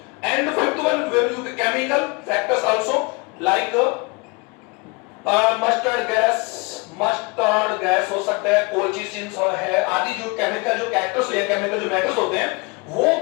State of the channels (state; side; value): quieter; right; 28.5 dB